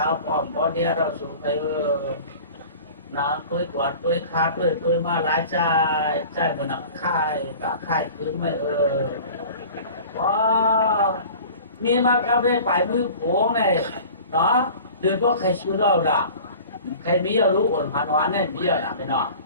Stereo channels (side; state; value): both; inverted; correlation -0.41